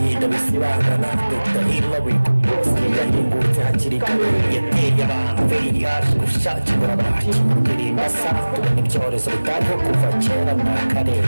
bisibangana. Dr. Hillary bose yahingutse hakiri kare, yateye abantu VIH gushakira abacu ndirimba sa tubona ibyorezo bitariho kuva kera na kare,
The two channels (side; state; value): both; inverted; correlation -1.00